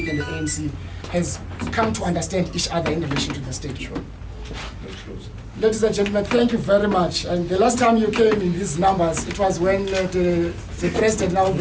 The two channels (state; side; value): identical; both; correlation 1.00